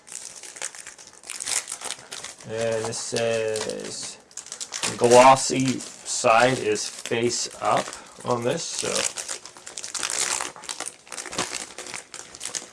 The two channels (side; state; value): both; identical; correlation 1.00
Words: And this says the glossy side is face up on this, so